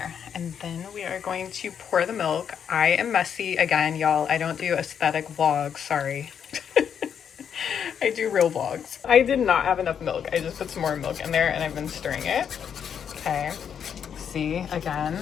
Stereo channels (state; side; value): quieter; right; 7.9 dB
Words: And then we are going to pour the milk. I am messy again, y'all. I don't do aesthetic vlogs, sorry. I do real vlogs. I did not have enough milk. I just put some more milk in there and I've been stirring it. Okay, see,